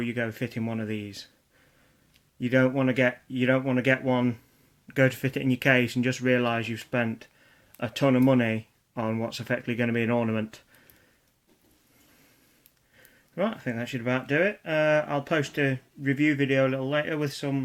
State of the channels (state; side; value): identical; both; correlation 1.00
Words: you go fitting one of these. You don't want to get one, go to fit it in your case and just realise you've spent a ton of money on what's effectively going to be an ornament. Right, I think that should about do it. I'll post a review video a little later with